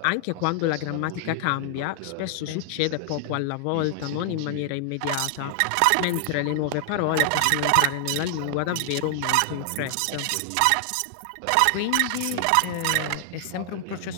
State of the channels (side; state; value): both; different; correlation 0.00